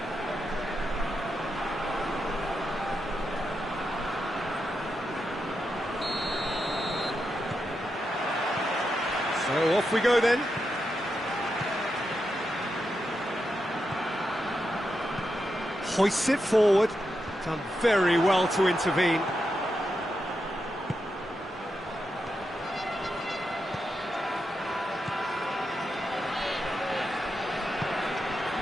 So off we go then. Hoists it forward. Done very well to intervene.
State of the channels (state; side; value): normal; both; correlation 0.86